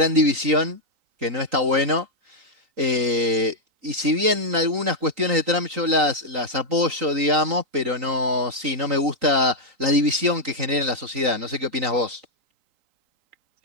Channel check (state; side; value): late; left; 3.9 ms